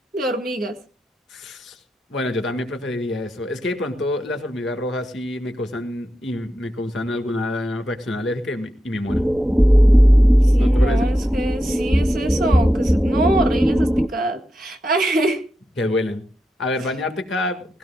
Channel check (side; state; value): both; normal; correlation 0.88